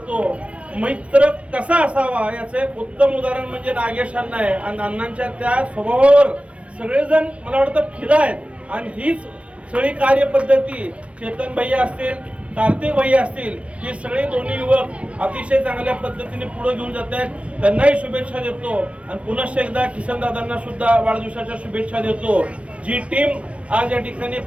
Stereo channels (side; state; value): left; late; 0.062 ms